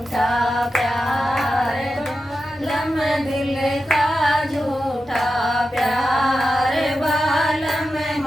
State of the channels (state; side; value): normal; both; correlation 0.90